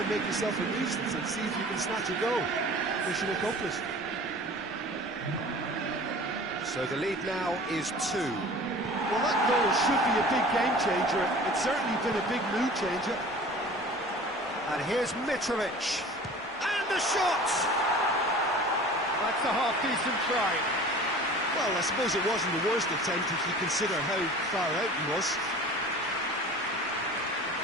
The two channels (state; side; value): normal; both; correlation 0.42